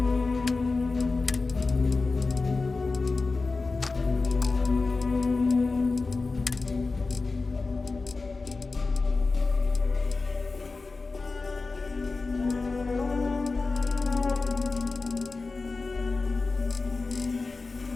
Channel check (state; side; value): quieter; right; 3.9 dB